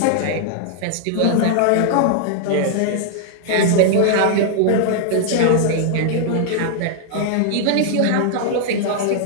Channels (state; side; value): different; both; correlation -0.01